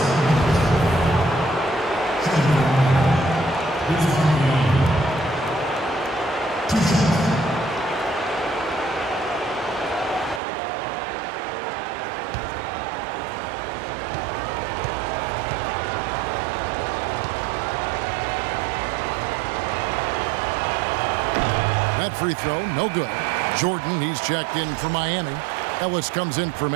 free throw, no good. Jordan, he's checked in for Miami. Ellis comes in for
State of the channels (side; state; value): left; drops out; at 10.4 s